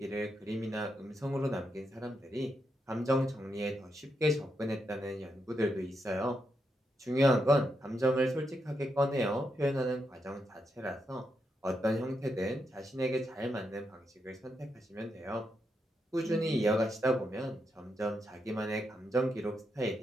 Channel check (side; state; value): both; normal; correlation 0.83